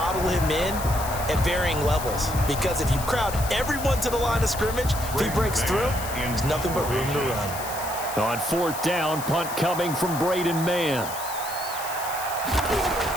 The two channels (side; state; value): left; noise; hiss, 10 dB below the sound